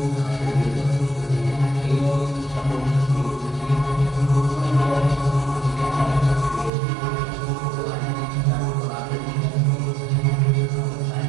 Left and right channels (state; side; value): drops out; left; at 6.7 s